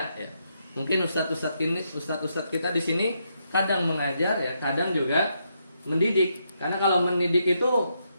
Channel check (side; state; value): both; inverted; correlation -0.79